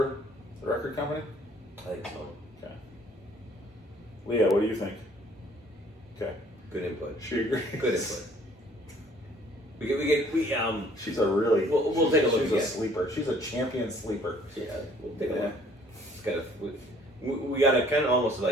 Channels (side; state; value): both; normal; correlation 0.58